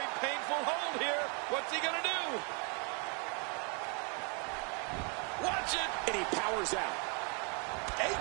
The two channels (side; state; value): left; quieter; 36.3 dB